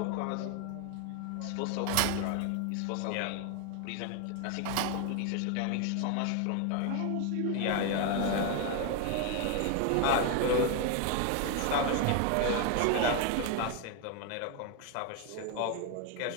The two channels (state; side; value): different; both; correlation 0.01